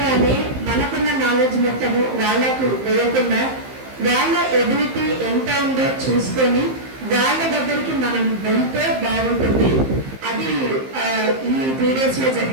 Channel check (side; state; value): left; late; 15 ms